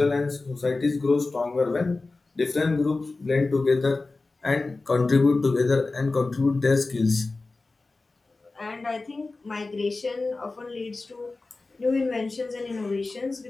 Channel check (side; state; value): right; quieter; 3.5 dB